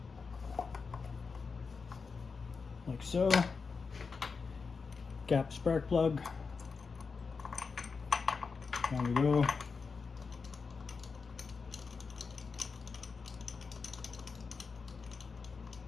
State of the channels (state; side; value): quieter; right; 5.0 dB